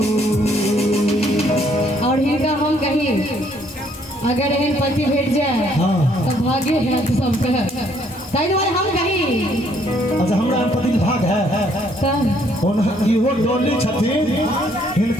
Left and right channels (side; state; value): both; normal; correlation 0.66